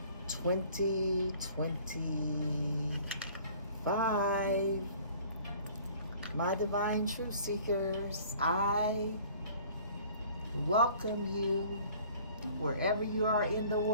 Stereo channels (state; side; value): inverted; both; correlation -0.51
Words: 2025. My divine truth seekers, I welcome you wherever you are in the